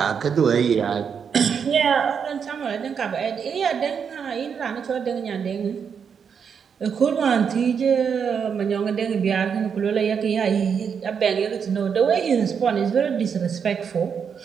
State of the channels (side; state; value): left; quieter; 6.9 dB